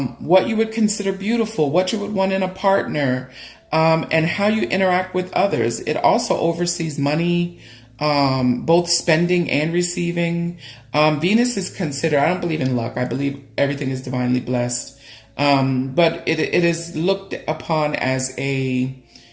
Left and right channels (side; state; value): both; identical; correlation 1.00